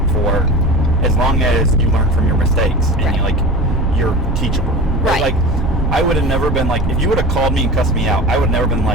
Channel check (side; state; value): both; normal; correlation 0.33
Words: for, as long as you learn from your mistakes and you're teachable. Right. Like I would have never been like, if you would have called me and cussed me out, I would have never been